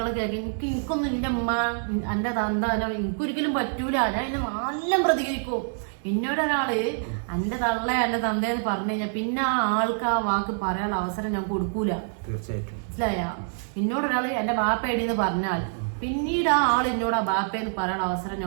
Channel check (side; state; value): left; silent; 57 dB below the other